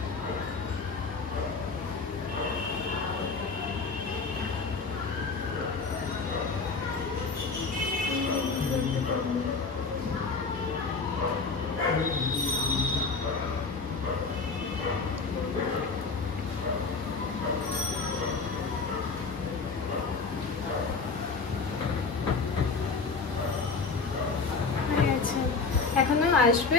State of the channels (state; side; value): quieter; right; 4.4 dB